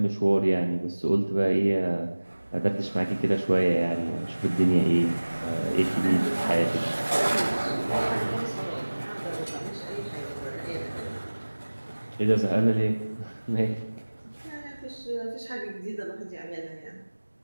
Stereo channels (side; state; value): both; inverted; correlation -1.00